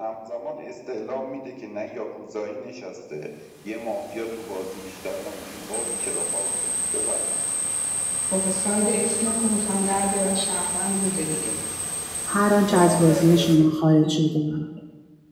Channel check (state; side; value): identical; both; correlation 1.00